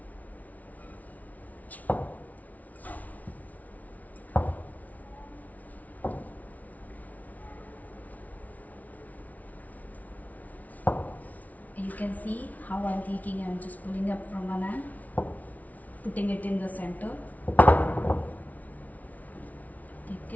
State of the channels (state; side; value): late; right; 0.073 ms